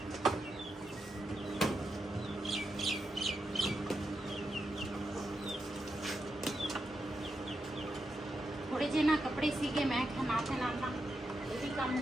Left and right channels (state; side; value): normal; both; correlation 0.86